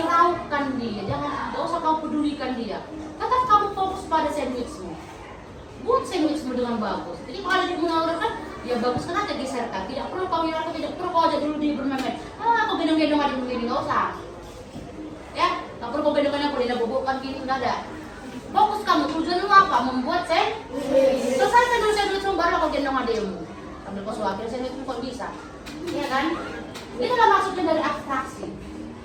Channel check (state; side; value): identical; both; correlation 1.00